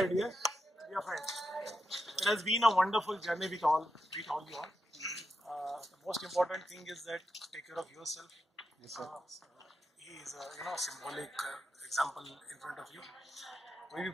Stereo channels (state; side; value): normal; both; correlation 0.86